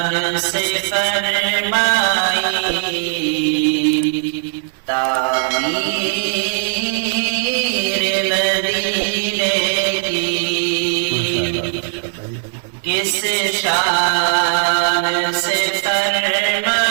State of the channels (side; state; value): left; silent; 62 dB below the other